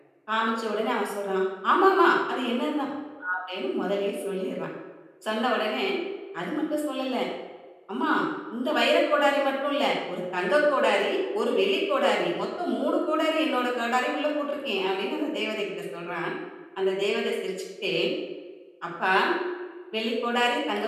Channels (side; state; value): both; identical; correlation 1.00